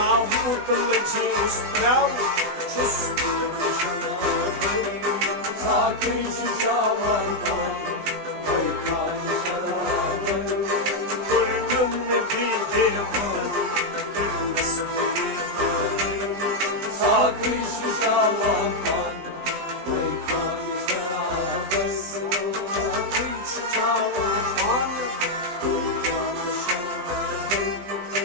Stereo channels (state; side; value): late; left; 20 ms